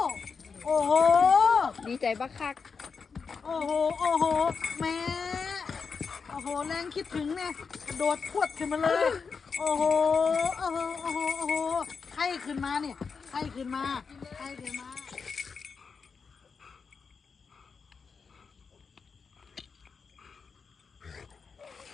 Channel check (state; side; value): quieter; right; 5.4 dB